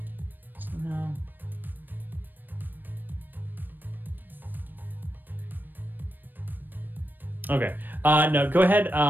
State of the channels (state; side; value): late; left; 0.092 ms